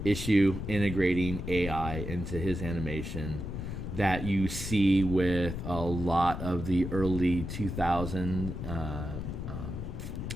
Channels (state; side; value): noise; left; rumble, 6 dB below the sound